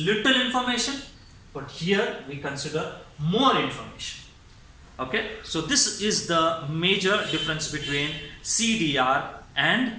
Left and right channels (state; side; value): identical; both; correlation 1.00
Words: information. But here, we consider more information. Okay, so this is the major difference between CDR